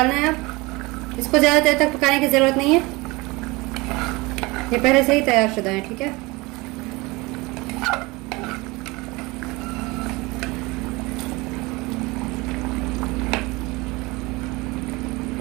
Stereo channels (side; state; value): left; quieter; 23.7 dB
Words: है। अब इसको ज़्यादा देर तक पकाने की ज़रूरत नहीं है, ये पहले से ही तैयार शुदा है। ठीक है,